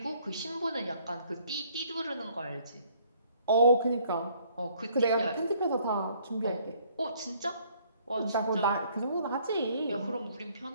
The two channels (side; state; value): both; inverted; correlation -0.62